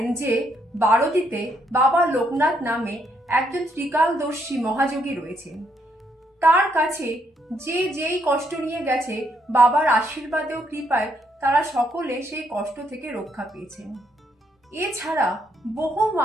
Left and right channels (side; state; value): both; normal; correlation 0.74